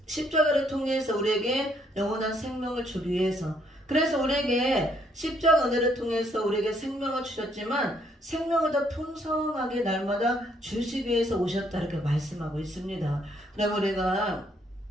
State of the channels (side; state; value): both; normal; correlation 0.69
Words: 십자가를 통해서 우리에게 영원한 생명을 주기 위해서, 그래서 우리에게 십자가 은혜를 통해서 우리에게 생명을 주셨지만 생명을 더 풍성하게 날마다 주시기 위해서 오셨다 이렇게 말씀하고 있습니다. 그럼 우리가